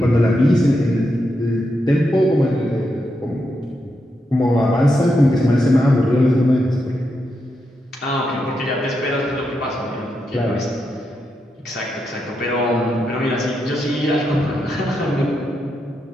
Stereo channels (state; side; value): normal; both; correlation 0.84